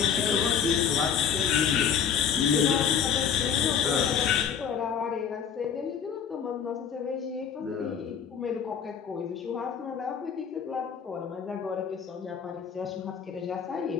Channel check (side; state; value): right; quieter; 7.7 dB